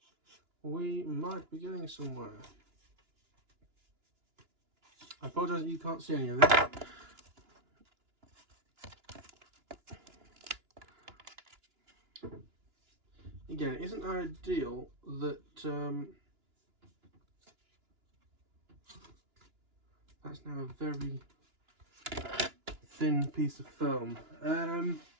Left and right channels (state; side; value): late; left; 2.9 ms